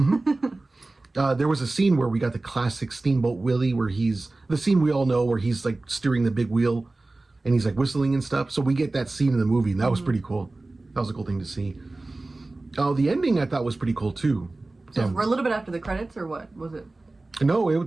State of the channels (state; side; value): quieter; left; 3.1 dB